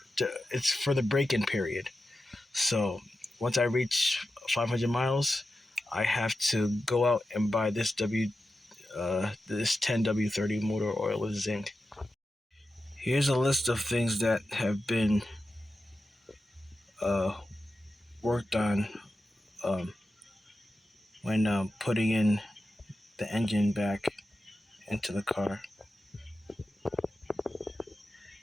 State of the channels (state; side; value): normal; both; correlation 0.92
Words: it's for the break-in period. So once I reach 500 miles, I have to go out and buy this 10W30 motor oil with zinc. Here's a list of things that have been uh, worked on um, when putting in the engine back into the car.